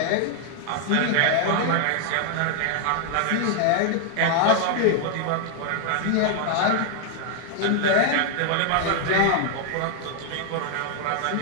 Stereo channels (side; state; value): both; different; correlation 0.00